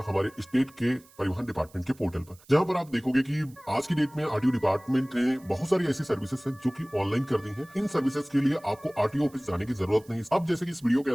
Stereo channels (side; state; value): right; noise; hiss, 27 dB below the sound